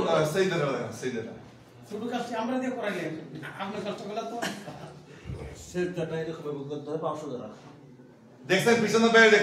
সেইদারা শুধু কাজটি আমরা দিয়ে করাইলেন, আপনার কষ্টগুলো তো সেটাটা এরকম করতে হবে 500 টাকা। দেখছেন পিছনে বাইরে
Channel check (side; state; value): both; identical; correlation 1.00